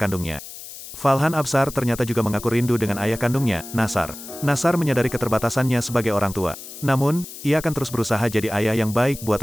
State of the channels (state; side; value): noise; left; hiss, 13 dB below the sound